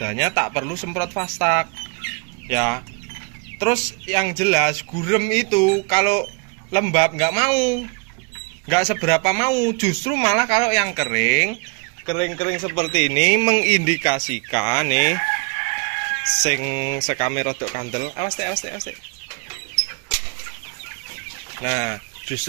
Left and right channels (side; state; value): left; quieter; 33.4 dB